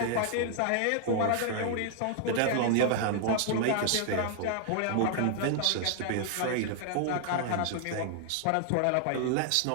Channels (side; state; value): both; different; correlation 0.00